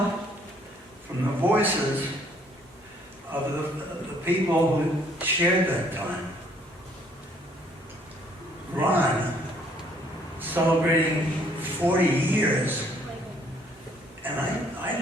from the voices of the people who shared that time. Ron, celebrating 40 years, and I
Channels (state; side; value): normal; both; correlation 0.63